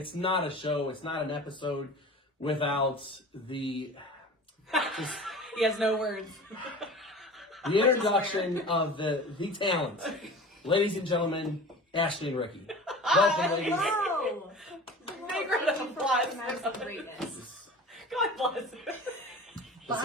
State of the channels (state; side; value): normal; both; correlation 0.38